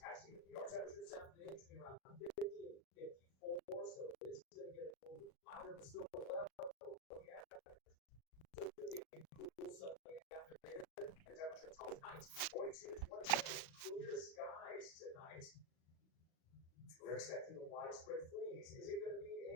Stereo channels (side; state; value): right; late; 37 ms